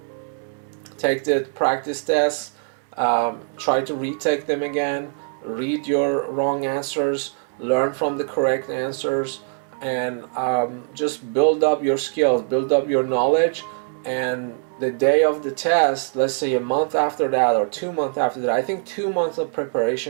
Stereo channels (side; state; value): left; silent; 64 dB below the other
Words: Take the practice tests, try to retake them again, read your wrong answers, learn from the correct answers, and just build up your skills, build up your knowledge. And the day of the test, let's say a month after that or 2 months after that, I think 2 months of